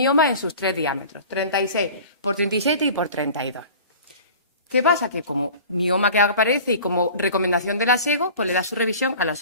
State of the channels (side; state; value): both; inverted; correlation -0.41